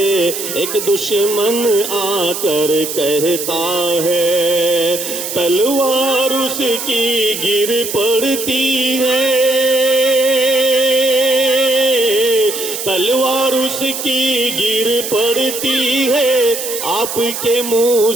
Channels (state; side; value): noise; right; hiss, 6 dB below the sound